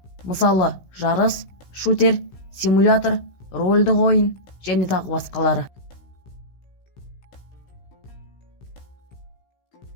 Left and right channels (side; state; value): right; late; 16 ms